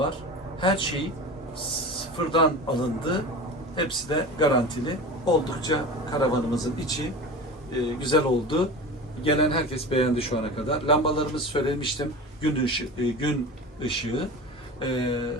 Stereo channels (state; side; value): normal; both; correlation 0.32